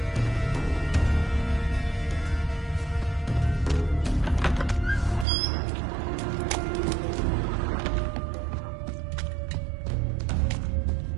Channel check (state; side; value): drops out; left; at 5.2 s